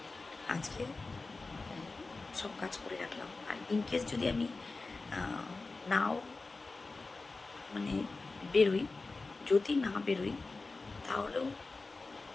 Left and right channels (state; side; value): quieter; right; 3.7 dB